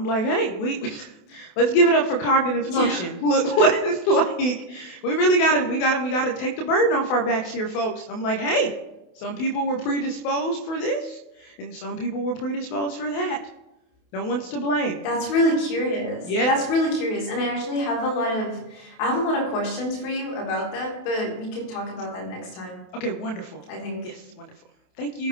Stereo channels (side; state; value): right; late; 28 ms